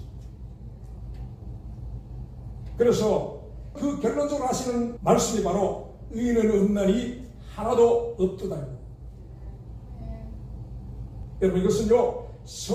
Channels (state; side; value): identical; both; correlation 1.00